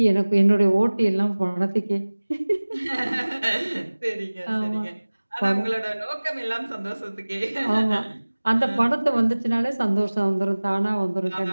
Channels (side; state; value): both; inverted; correlation -1.00